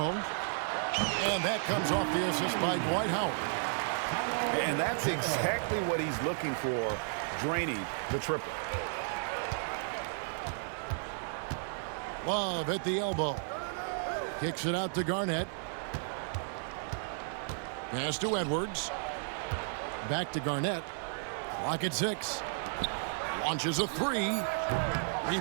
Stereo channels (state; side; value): silent; left; digital silence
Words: And that comes off the assist by Dwight Howard. And that's exactly what he's looking for, draining the triple. Love at the elbow. Kicks it out to Garnett. Pass to Edwards. Back to Garnett. Clock at 6. Launches a three.